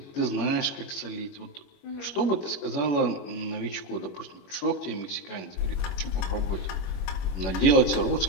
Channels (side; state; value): right; late; 21 ms